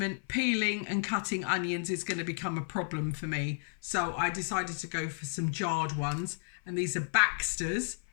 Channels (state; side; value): silent; right; 56 dB below the other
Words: peeling and cutting onions is going to become a problem for me. So I decided to go for some jarred ones. And these are Baxter's,